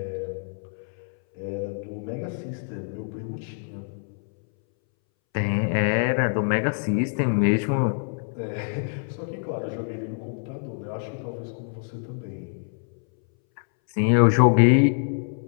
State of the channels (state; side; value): silent; right; 61 dB below the other